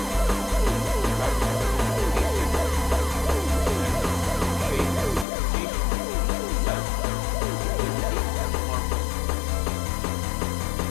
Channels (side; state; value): right; drops out; at 5.2 s